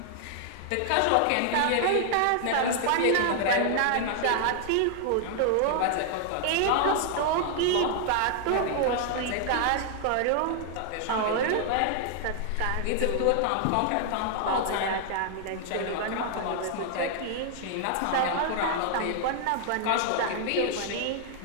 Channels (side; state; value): both; different; correlation 0.00